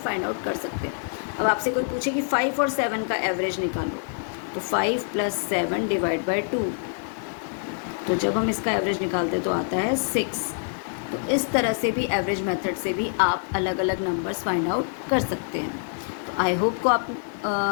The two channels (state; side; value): silent; right; digital silence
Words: आउट कर सकते हैं। अब आपसे कोई पूछे कि 5 और 7 का एवरेज निकालो, तो 5 + 7 डिवाइड बाय 2। तो जब हम इसका एवरेज निकालते हैं तो आता है 6। तो इस तरह से भी एवरेज मेथड से भी आप अलग अलग नंबर्स फाइंड आउट कर सकते हैं। तो आई होप को